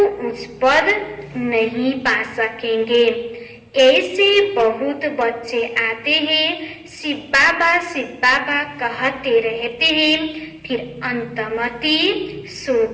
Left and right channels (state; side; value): identical; both; correlation 1.00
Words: उच्च पद नहीं पा सकेंगे। ऐसे बहुत बच्चे आते हैं, शिव बाबा कहते रहते हैं, फिर अंतमति